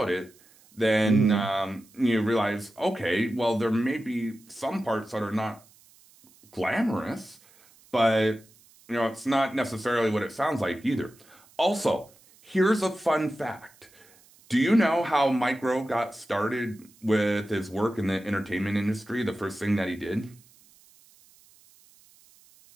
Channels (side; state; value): right; noise; hiss, 28 dB below the sound